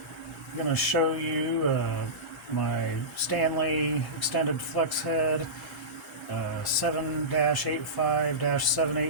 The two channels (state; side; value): normal; both; correlation -0.18